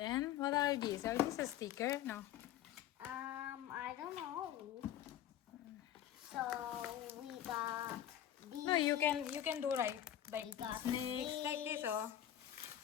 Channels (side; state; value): right; quieter; 11.5 dB